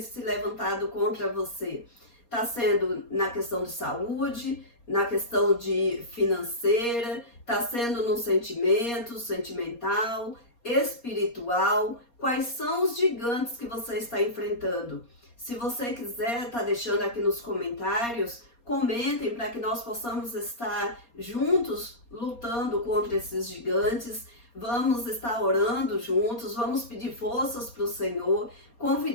se levantado contra você? Está sendo na questão de saúde, na questão de financeira, está sendo no sentimento, sentimental, espiritual. Quais são os gigantes que você está enfrentando? Se você quiser, está deixando aqui nos comentários. Comentem para que nós possamos estar juntos lutando contra esses gigantes. Vamos estar orando juntos, vamos pedir forças para o Senhor,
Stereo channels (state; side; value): late; right; 4.2 ms